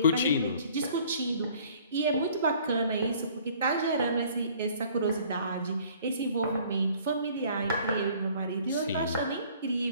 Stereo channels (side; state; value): both; inverted; correlation -0.55